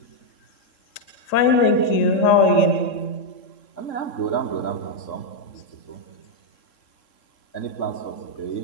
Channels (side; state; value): right; late; 3.7 ms